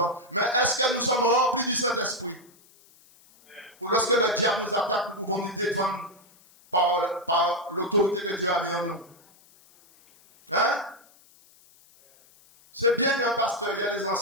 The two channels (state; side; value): noise; left; hiss, 28 dB below the sound